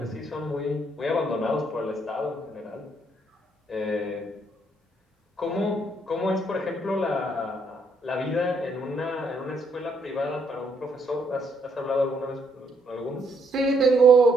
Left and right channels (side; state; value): both; normal; correlation 0.72